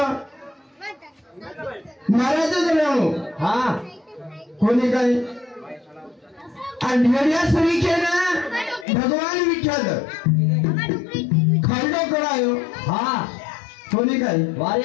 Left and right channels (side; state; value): right; drops out; at 8.8 s